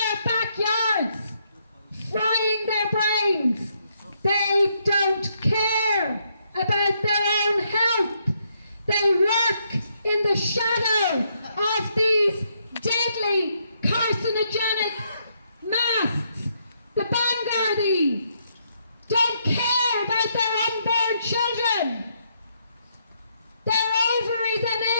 backyards, frying their brains. They don't care about their own health. They work in the shadow of these deadly carcinogenic masks. The Vanguardi don't care about their unborn children. Their ovaries and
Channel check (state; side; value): inverted; both; correlation -0.75